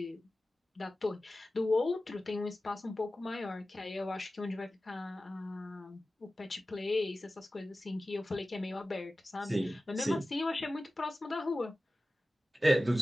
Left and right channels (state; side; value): normal; both; correlation 0.95